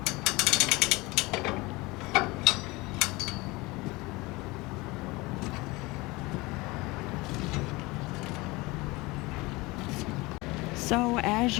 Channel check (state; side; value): quieter; right; 22.9 dB